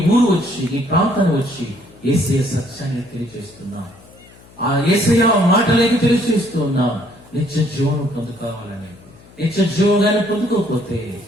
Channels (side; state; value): left; noise; hum, 25 dB below the sound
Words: ఊరు వచ్చి, నీ ప్రాంతాన్ని వచ్చి యేసయ్య సత్యాన్ని తెలియజేస్తున్నా. ఆ యేసయ్య మాటలేకి తెలియజేస్తున్నా. నిత్య జీవనం పొందుకోవాలని. నిత్య జీవనాన్ని పొందుకోకపోతే